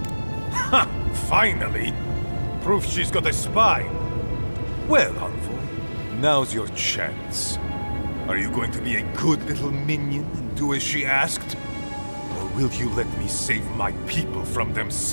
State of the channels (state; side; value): inverted; both; correlation -1.00